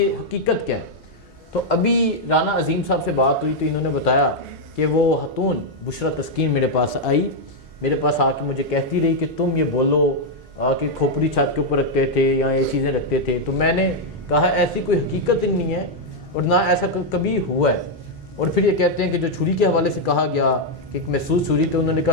हकीकत क्या है। तो अभी राना अजीम साहब से बात हुई तो इन्होंने बताया कि वो खातून बुशरा तस्कीन मेरे पास आई, मेरे पास आके मुझे कहती रही कि तुम ये बोलो कि खोपड़ी छत के ऊपर रखते थे या ये चीज़ें रखते थे, तो मैंने कहा ऐसी कोई हकीकत ही नहीं है और ना ऐसा कभी हुआ है। और फिर ये कहते हैं कि जो छुरी के हवाले से कहा गया कि एक महसूस छुरी, तो उन्होंने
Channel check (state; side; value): normal; both; correlation -0.01